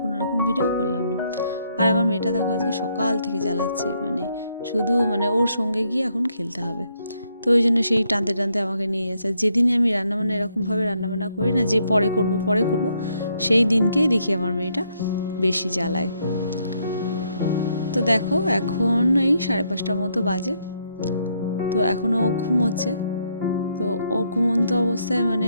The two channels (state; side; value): inverted; both; correlation -0.74